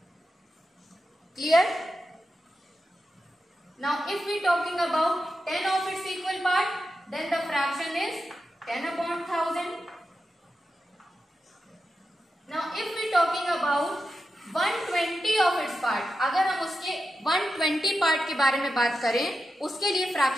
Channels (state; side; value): normal; both; correlation 0.89